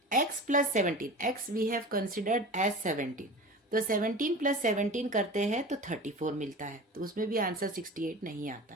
x plus 17, x we have considered as 17, तो 17 प्लस 17 करते हैं तो 34 मिलता है, तो उसमें भी आंसर 68 नहीं आता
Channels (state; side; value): normal; both; correlation 0.35